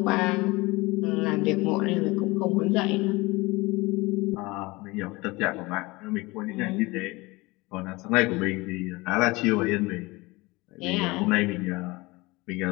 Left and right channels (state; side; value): quieter; right; 22.9 dB